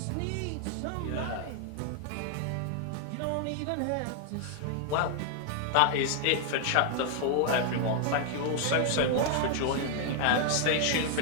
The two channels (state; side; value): different; both; correlation 0.00